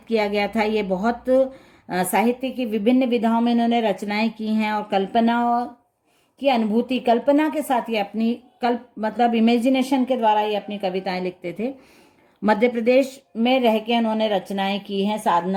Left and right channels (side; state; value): both; identical; correlation 1.00